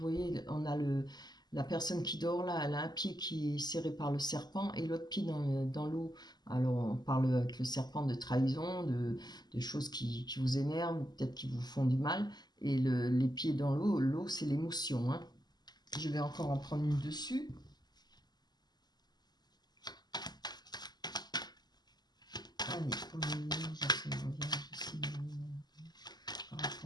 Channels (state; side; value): late; right; 0.20 ms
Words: on a la personne qui dort là, elle a un pied qui est serré par le serpent et l'autre pied dans l'eau. Alors on parle avec le serpent de trahison, de choses qui vous énervent, peut-être qui vous font du mal. Et les pieds dans l'eau c'est l'émotion. Hein. Je vais encore en prendre une dessus. Allez, pour les vierges, ici, par